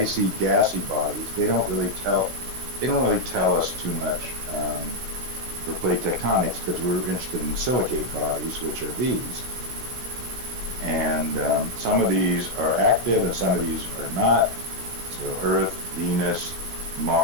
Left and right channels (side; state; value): left; late; 16 ms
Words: gassy bodies. They don't really tell us too much for plate tectonics, because we're interested in silicate bodies, which are these. And some of these are active and some of these are not. So Earth, Venus,